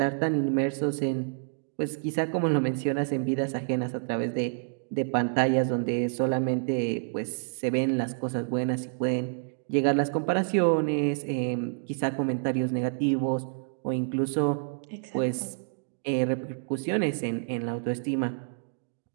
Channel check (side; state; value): left; silent; digital silence